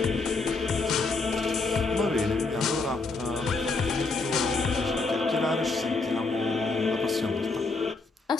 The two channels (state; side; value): quieter; right; 3.7 dB